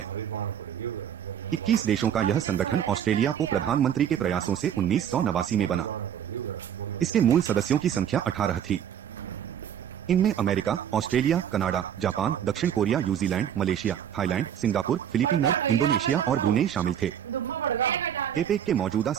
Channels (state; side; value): quieter; left; 9.4 dB